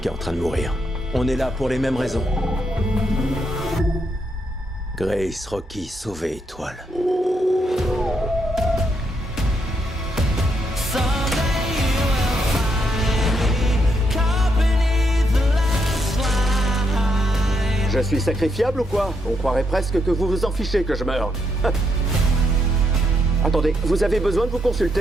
qui est en train de mourir. On est là pour les mêmes raisons. Grace, Rocky, sauver étoile. Je suis sacrifiable ou quoi? On croirait presque que vous vous en fichez que je meure. Attendez, vous avez besoin de vous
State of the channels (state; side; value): normal; both; correlation 0.78